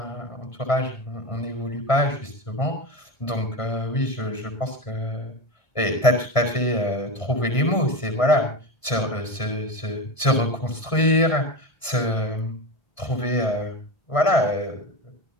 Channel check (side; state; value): right; late; 1.5 ms